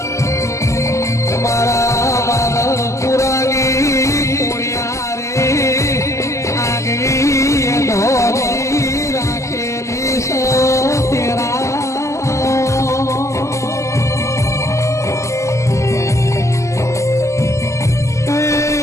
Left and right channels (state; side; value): late; right; 0.14 ms